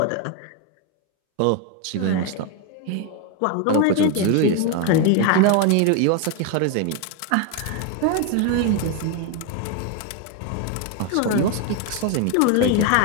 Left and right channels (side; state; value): both; different; correlation 0.01